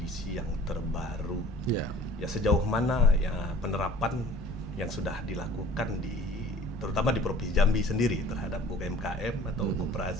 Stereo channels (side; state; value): both; normal; correlation 0.47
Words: yang terbaru. Ya. Ya, sejauh mana ya penerapan yang sudah dilakukan terutama di Provinsi Jambi sendiri terhadap UMKM atau